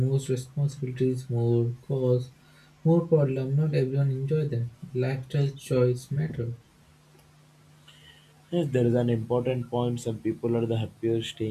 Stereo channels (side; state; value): both; identical; correlation 1.00